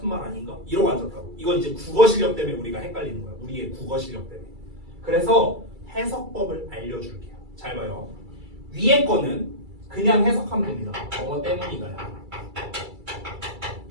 말 아닌가? 이러고 앉았다고. 이건 이제 국어 실력 때문에 우리가 헷갈리는 거야. 우리의 국어 실력 때문에. 그래서 해석법을 알려줄게요. 잘 봐요. 위에 거는 그냥 해석하면 됩니다. 뭐뭐 때문이다요.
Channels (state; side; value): late; left; 2.3 ms